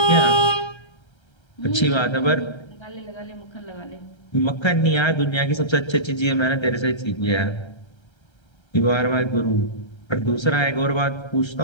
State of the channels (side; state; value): right; late; 1.3 ms